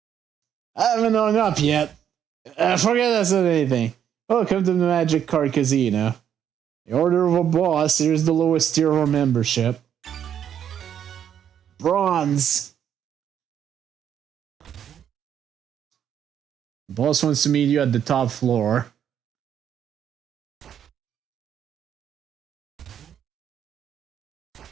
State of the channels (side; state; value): left; quieter; 9.2 dB